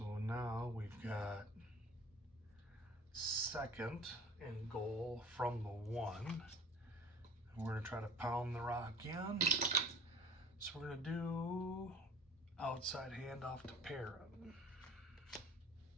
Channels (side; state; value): both; normal; correlation 0.45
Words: now we've got 2nd and goal from the 1. And we're going to try to pound the rock in. So we're going to do outside handoff to Perrin.